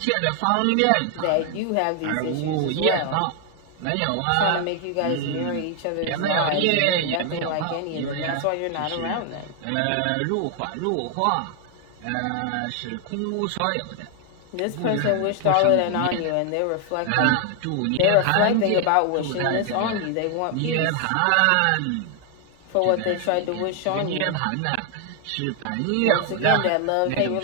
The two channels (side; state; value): both; different; correlation 0.00